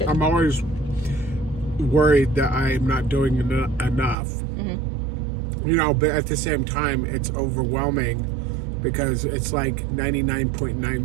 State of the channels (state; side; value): drops out; left; at 4.2 s